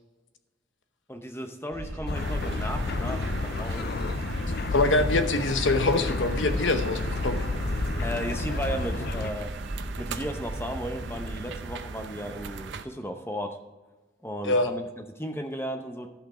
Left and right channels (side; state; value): both; normal; correlation 0.35